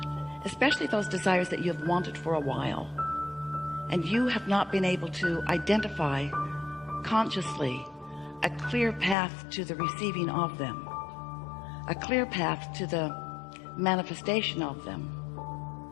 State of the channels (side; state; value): right; drops out; at 9.2 s